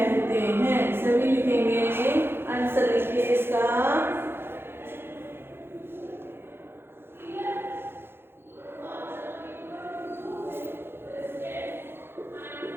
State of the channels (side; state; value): left; late; 0.11 ms